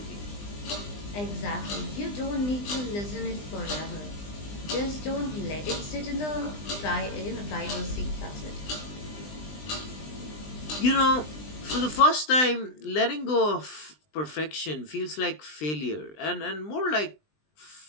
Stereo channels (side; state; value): right; late; 20 ms